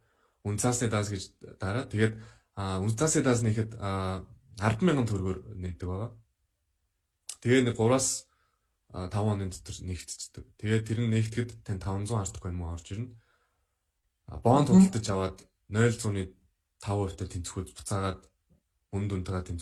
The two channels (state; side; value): identical; both; correlation 1.00